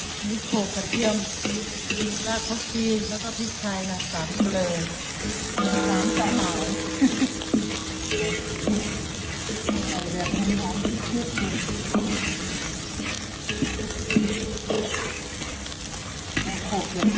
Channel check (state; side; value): identical; both; correlation 1.00